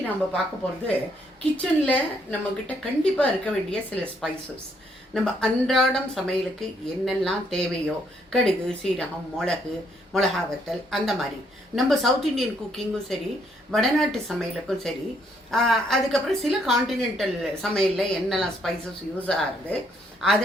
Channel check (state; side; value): normal; both; correlation 0.71